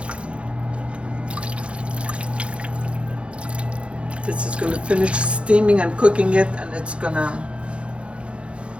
This is going to finish steaming and cooking it, and it's going to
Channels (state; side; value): late; left; 0.059 ms